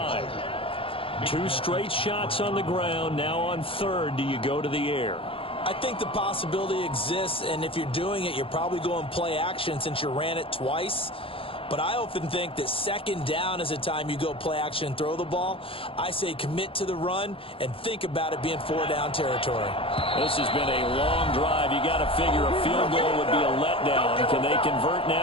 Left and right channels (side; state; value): right; late; 0.26 ms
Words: 2 straight shots on the ground. Now on 3rd, do you go to the air? I think the possibility exists, and if you're doing it, you're probably going play action since you ran it twice. But I often think that 2nd down is a time you go play action and throw the ball. I say commit to the run and think about it being 4-down territory. This has been a long drive. You got to figure a field goal would be a letdown. Can they convert